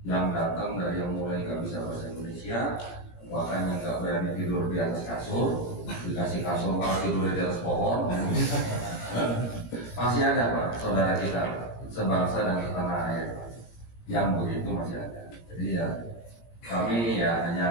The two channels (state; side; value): late; right; 17 ms